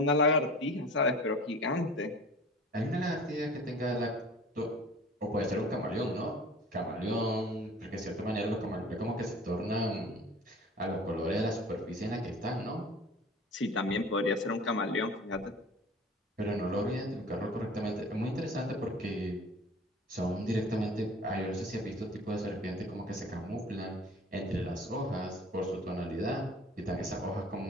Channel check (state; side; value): normal; both; correlation 0.43